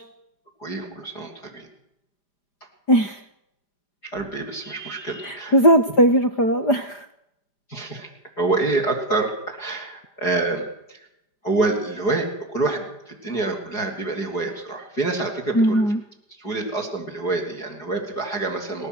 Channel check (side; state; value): right; late; 5.0 ms